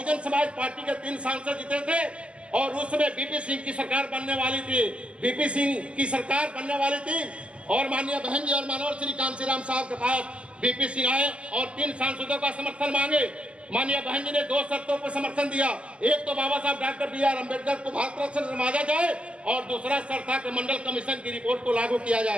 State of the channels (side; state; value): left; late; 0.059 ms